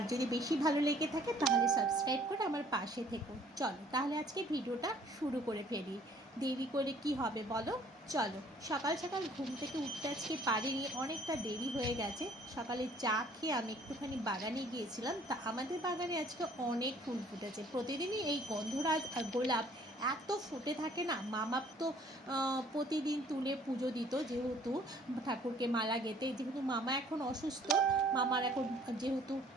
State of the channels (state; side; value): normal; both; correlation 0.57